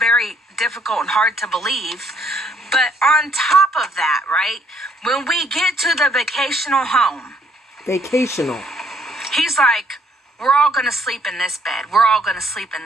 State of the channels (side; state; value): both; normal; correlation 0.67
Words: difficult and hard to believe. But on top of that, right, when we get to the vacational home. He's like, "We're all going to sleep in this bed. We're all going to sleep in